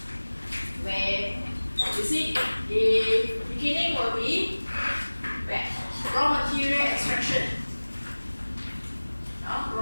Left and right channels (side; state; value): both; inverted; correlation -1.00